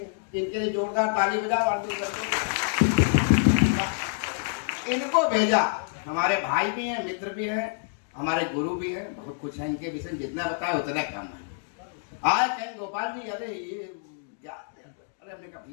इनके लिए जोरदार ताली बजा, इनको भेजा। हमारे भाई भी हैं, मित्र भी हैं, हमारे गुरु भी हैं, बहुत कुछ है इनके विषय में, जितना बताया उतना कम है। आए कहीं गोपाल जी, अरे ये क्या, अरे हमने कहा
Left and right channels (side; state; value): right; silent; digital silence